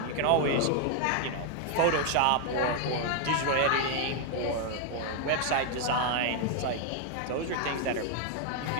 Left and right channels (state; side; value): different; both; correlation 0.00